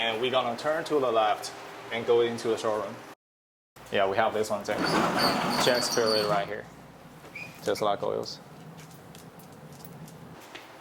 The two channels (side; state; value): both; identical; correlation 1.00